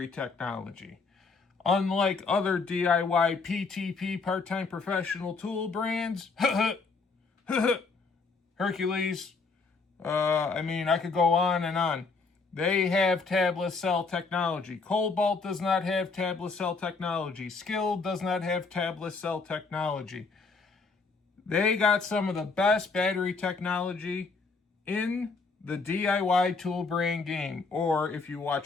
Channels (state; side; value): quieter; right; 4.3 dB